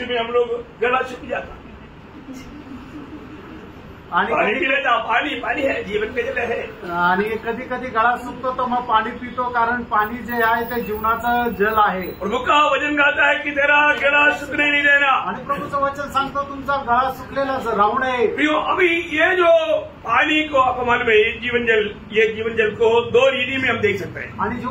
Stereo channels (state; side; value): identical; both; correlation 1.00